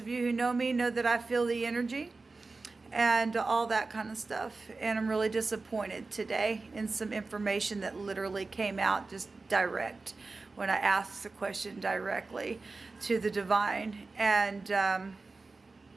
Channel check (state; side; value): quieter; left; 3.8 dB